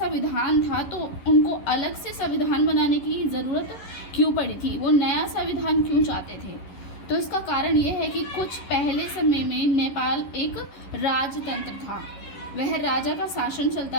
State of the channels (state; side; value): late; right; 11 ms